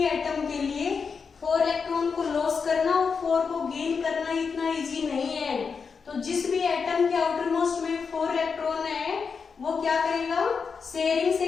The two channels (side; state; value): right; quieter; 5.6 dB